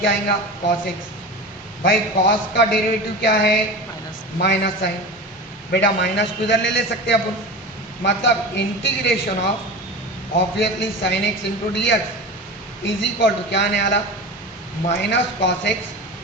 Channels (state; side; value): normal; both; correlation 0.30